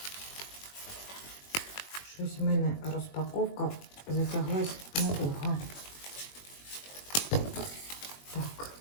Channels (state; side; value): late; right; 21 ms